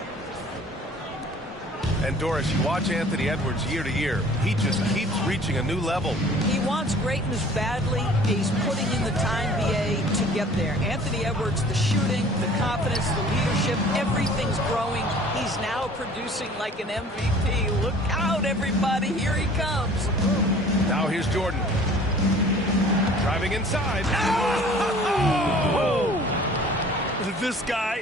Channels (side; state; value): both; normal; correlation 0.49